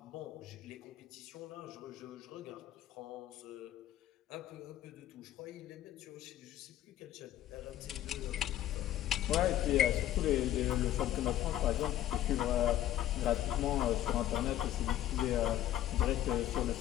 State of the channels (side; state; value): right; quieter; 12.9 dB